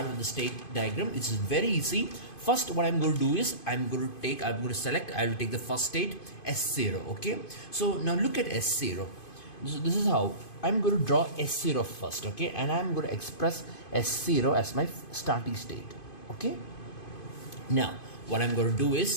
with the state diagram. It's very easy. First, what I'm going to do is I will take the first state, S0. Okay, so now look at S0. So this is how I'm going to draw S0 first. Okay, and I'm going to express S0 as my starting state. Okay, now what I'm going to do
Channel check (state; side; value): late; right; 2.5 ms